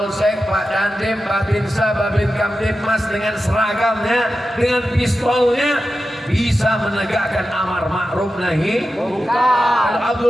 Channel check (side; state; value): both; normal; correlation 0.92